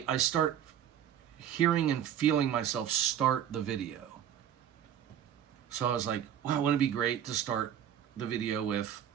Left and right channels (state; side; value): quieter; left; 9.9 dB